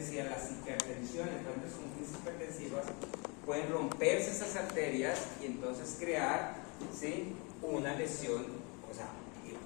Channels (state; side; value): quieter; right; 31.2 dB